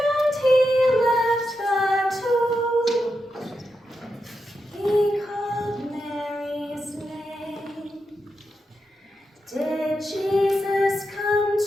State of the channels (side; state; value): both; normal; correlation 0.86